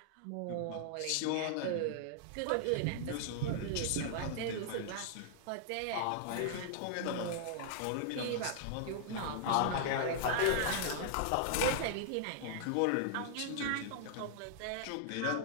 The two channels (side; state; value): both; different; correlation -0.01